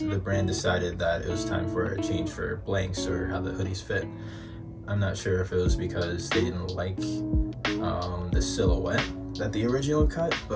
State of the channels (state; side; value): identical; both; correlation 1.00